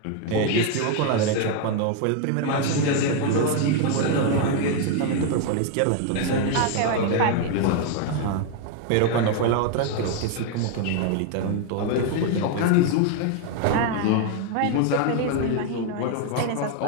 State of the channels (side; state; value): both; different; correlation 0.01